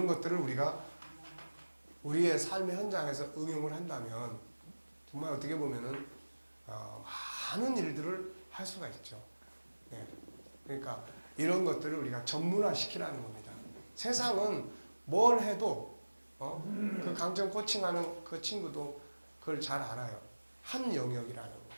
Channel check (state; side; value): inverted; both; correlation -1.00